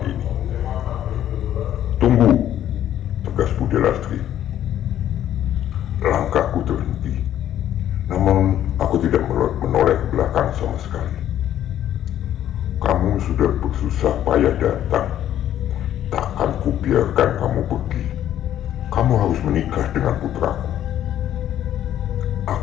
ini. "Tunggu," tegas Bude Lastri. Langkahku terhenti, namun aku tidak menoleh ke belakang sama sekali. "Kamu sudah bersusah payah datang. Takkan kubiarkan kamu pergi. Kamu harus menikah dengan putraku."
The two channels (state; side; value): quieter; right; 11.4 dB